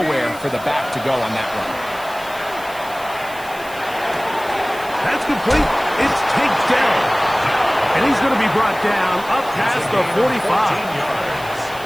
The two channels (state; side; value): noise; right; hiss, 18 dB below the sound